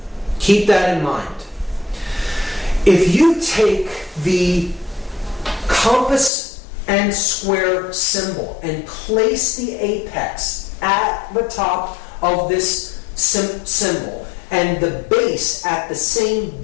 Keep that in mind. If you take the compass and square symbol and place the apex at the top of this symbol and the base at the same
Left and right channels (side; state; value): right; drops out; at 6.3 s